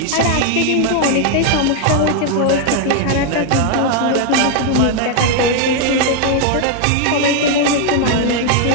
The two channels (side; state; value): both; different; correlation 0.00